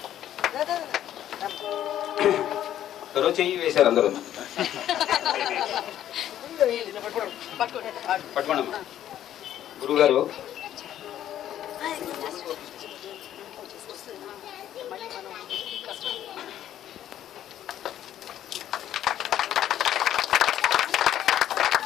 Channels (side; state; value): right; quieter; 11.5 dB